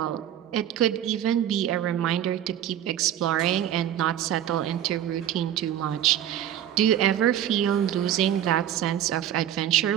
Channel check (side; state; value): left; quieter; 11.0 dB